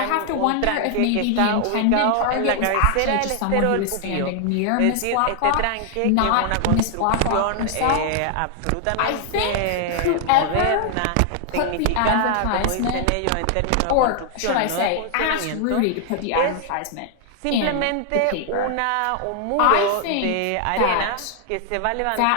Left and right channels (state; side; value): different; both; correlation 0.00